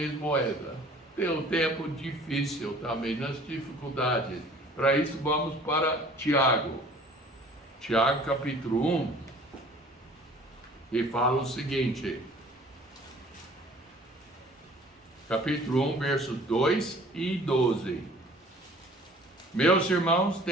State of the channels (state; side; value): normal; both; correlation 0.50